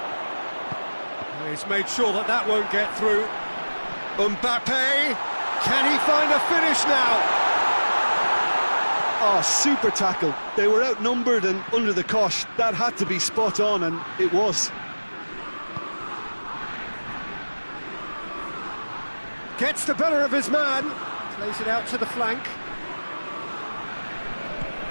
He's made sure that that won't get through. Mbappe, can he find a finish now? Oh, super tackle. They were outnumbered and under the cosh. That had to be spot on, and it was. Gets the better of his man. Plays it out to the flank.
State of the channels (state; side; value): inverted; both; correlation -1.00